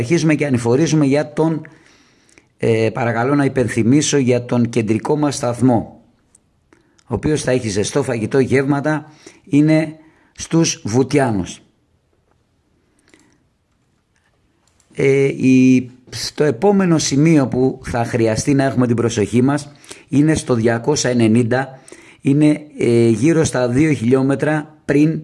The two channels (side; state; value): both; identical; correlation 1.00